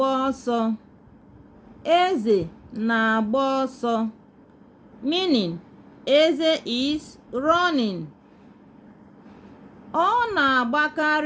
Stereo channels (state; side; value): identical; both; correlation 1.00